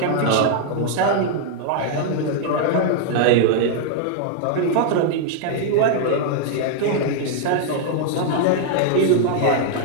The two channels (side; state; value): both; different; correlation -0.01